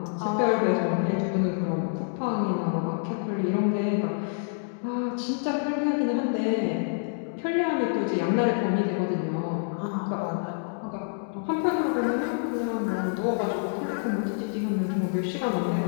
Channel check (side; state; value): right; silent; digital silence